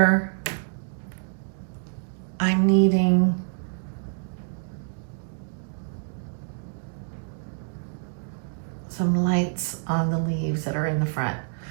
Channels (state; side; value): silent; left; digital silence